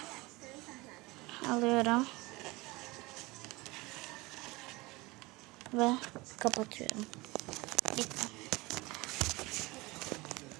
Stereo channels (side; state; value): left; quieter; 22.7 dB